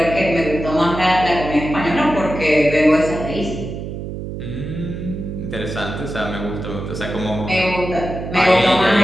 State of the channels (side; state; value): right; noise; hum, 7 dB below the sound